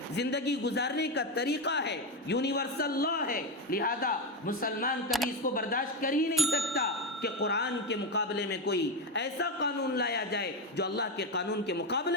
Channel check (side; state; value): both; normal; correlation 0.12